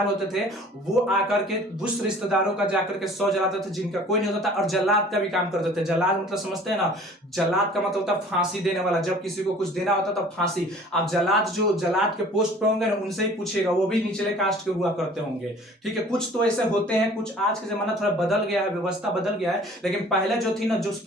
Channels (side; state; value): both; normal; correlation 0.49